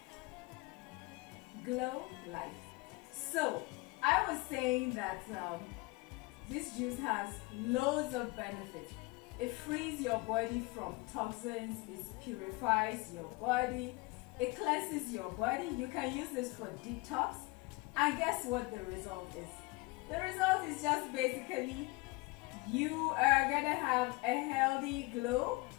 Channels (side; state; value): right; quieter; 24.3 dB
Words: Glow life. So, I was saying that this juice has loads of benefits. It frees your body from toxins, it purifies your body, it cleanses your body. You can use this for detox. And guess what the result is? The result is just basically you are gonna have a healthy glow